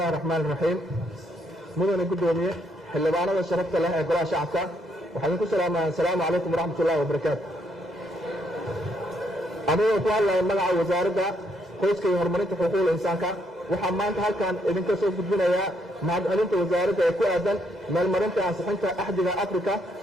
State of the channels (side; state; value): both; normal; correlation 0.73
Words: الرحمن الرحيم. مدن قدومية xildhibaanada sharafta leh ee golaha shacabka waxaan ku salaamayaa. assalaamu calaykum waraxmat ullahi wabarakaatu. anigoo ku hadlaya magaca wasaaradda qoyska iyo horumarinta xuquuqda insaanka waxaa maanta halkan idinka soo gudbinayaa mahadcelinta wasaaradda ee ku aadan meelmarinta ansixinta axdiga afrika